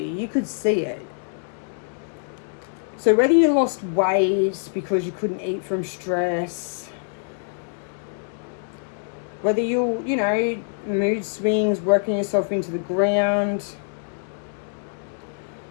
You could see it. So whether you lost weight because you couldn't eat from stress, whether you know, mood swings, working yourself into the ground,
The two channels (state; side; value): silent; right; digital silence